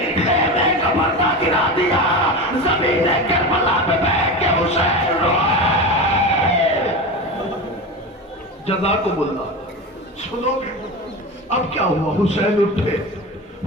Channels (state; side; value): normal; both; correlation 0.25